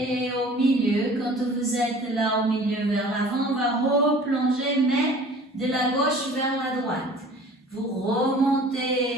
au milieu, quand vous êtes là au milieu vers l'avant, on va replonger, mais de la gauche vers la droite. Vous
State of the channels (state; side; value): normal; both; correlation 0.46